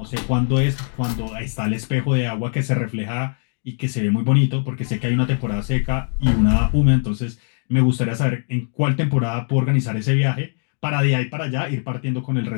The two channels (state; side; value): silent; right; 65 dB below the other